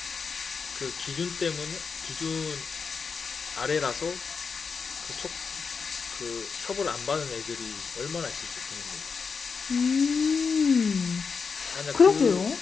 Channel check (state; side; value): quieter; right; 5.4 dB